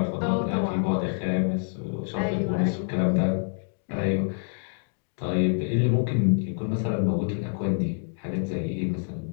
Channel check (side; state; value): right; silent; digital silence